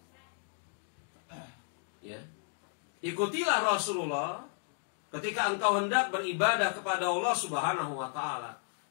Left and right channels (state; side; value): silent; right; 55 dB below the other